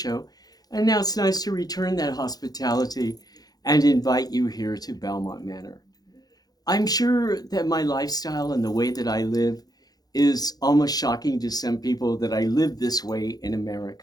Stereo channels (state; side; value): late; right; 0.19 ms